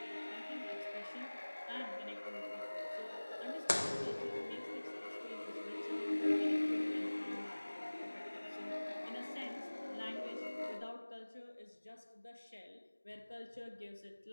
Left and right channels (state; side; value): inverted; both; correlation -1.00